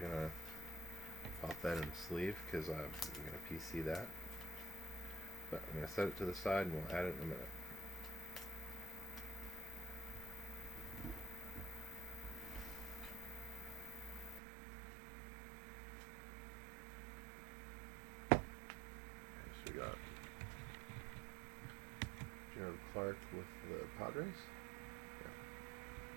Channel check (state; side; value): drops out; left; at 14.4 s